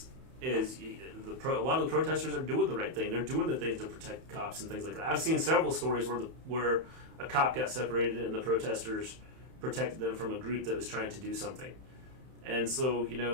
a lot of the protesters are doing the right thing. They're doing the things to protect cops and things like that. I've seen several stories where a cop got separated and the protesters protected them from a group that was trying to do something. And so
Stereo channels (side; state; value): left; late; 31 ms